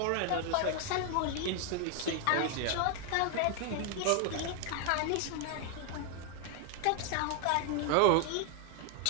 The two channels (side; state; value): both; different; correlation 0.00